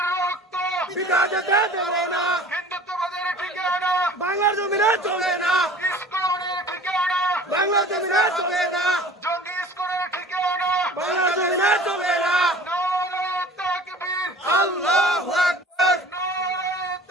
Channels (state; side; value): normal; both; correlation 0.45